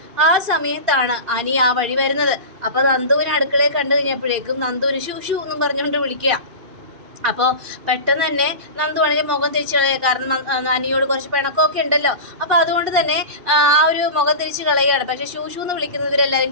ആ സമയത്താണ് അനി ആ വഴി വരുന്നത്. അപ്പൊ നന്ദുവിനെ അടുക്കളയിൽ കണ്ടു കഴിഞ്ഞപ്പോഴേക്കും നന്ദുവിന് ഷൂ എന്നും പറഞ്ഞുകൊണ്ട് വിളിക്കുക. അപ്പോൾ പെട്ടെന്ന് തന്നെ നന്ദു ആണെങ്കിൽ മുഖം തിരിച്ചു കളയുക. കാരണം അനിയോട് കുറച്ച് പിണക്കമൊക്കെ ഉണ്ടല്ലോ. അപ്പോൾ അതുകൊണ്ട് തന്നെ ആ ഒരു മുഖം തിരിച്ച് കളയുകയാണ്. പക്ഷേ ഷൂ എന്ന് വിളിക്കുന്നവരെല്ലാവരും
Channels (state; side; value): late; left; 2.7 ms